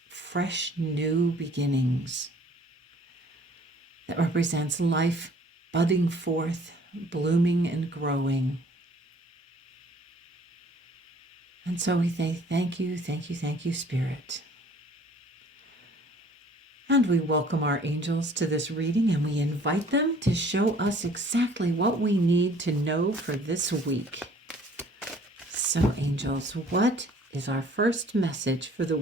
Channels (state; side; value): normal; both; correlation 0.55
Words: fresh new beginnings, that represents life budding forth, blooming and growing. And so we say, thank you, thank you, thank you, Spirit. And we welcome our angels to this reading, and we invite them to show us exactly what we need to know for this week. So, angels, what is our first message for the